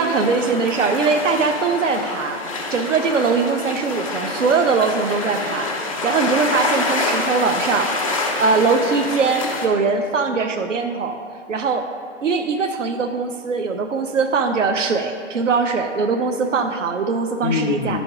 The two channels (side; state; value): left; quieter; 3.0 dB